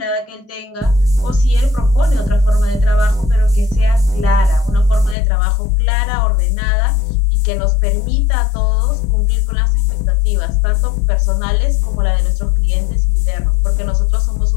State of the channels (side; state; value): right; drops out; at 5.2 s